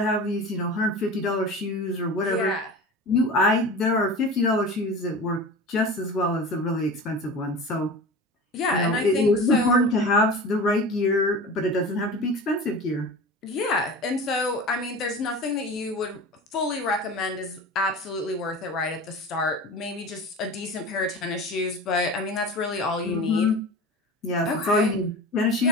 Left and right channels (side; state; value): both; normal; correlation 0.34